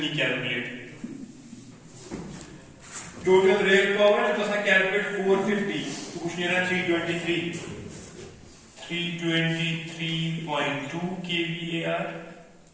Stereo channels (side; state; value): both; identical; correlation 1.00